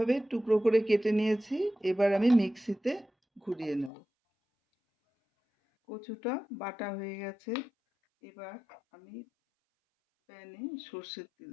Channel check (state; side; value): drops out; right; at 3.9 s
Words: টুকরো করে কেটে নিয়েছি। এবার আমি মিক্সিতে ঘুরিয়ে নেব। কচুটা বাটা হয়ে গেছে। এবার আমি প্যানে সর্ষের তেল